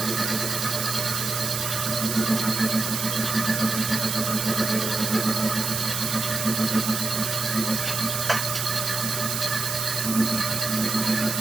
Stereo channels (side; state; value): right; noise; hiss, 2 dB below the sound